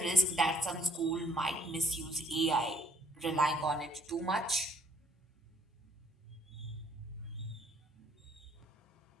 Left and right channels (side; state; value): both; normal; correlation 0.63